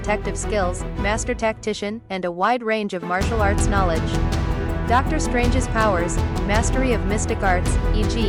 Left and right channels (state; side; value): identical; both; correlation 1.00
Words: skills, master tactician, and a wide range of martial arts knowledge. Doctor Strange's powers: mastery of mystic arts,